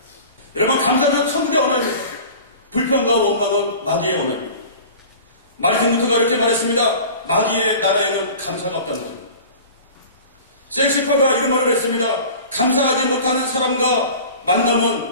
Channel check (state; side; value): inverted; both; correlation -0.40